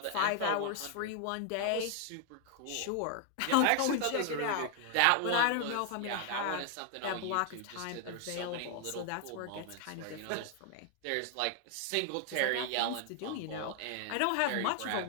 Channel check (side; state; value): both; different; correlation 0.00